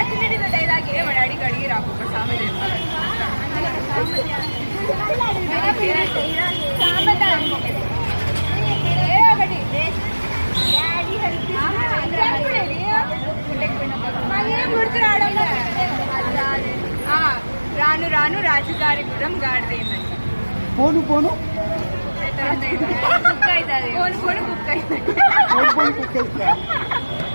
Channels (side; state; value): both; inverted; correlation -1.00